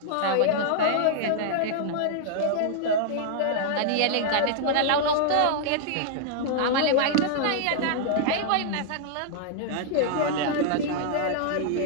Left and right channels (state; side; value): different; both; correlation -0.01